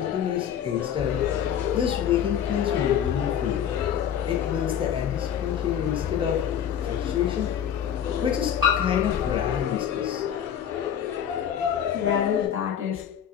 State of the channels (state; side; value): quieter; right; 9.1 dB